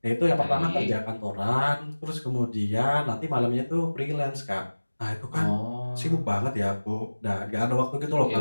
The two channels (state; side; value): inverted; both; correlation -1.00